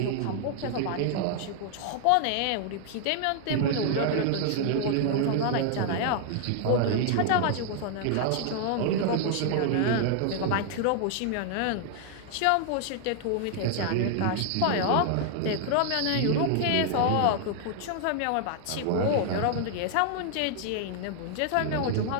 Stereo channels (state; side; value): different; both; correlation 0.00